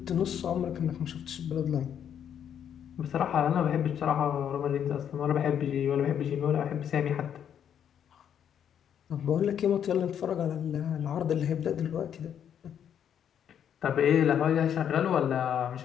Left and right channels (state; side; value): quieter; right; 9.0 dB